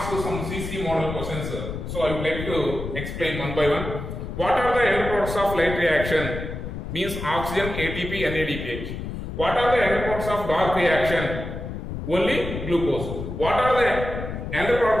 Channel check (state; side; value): noise; left; rumble, 6 dB below the sound